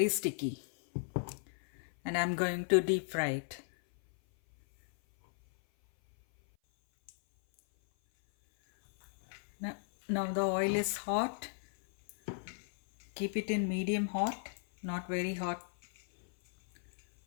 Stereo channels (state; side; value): silent; right; 54 dB below the other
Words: sticky. And I'm going to deep fry it. Now the oil is hot. Keep it in medium hot, not very hot.